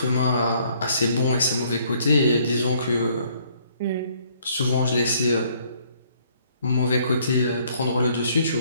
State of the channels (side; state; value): both; inverted; correlation -0.64